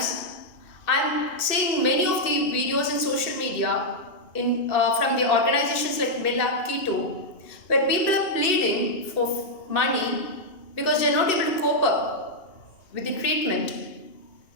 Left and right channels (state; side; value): late; right; 2.6 ms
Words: I'm seeing many of the videos in social media from the organizations like Millab Keto, where people are pleading for money because they're not able to cope up with the treatment.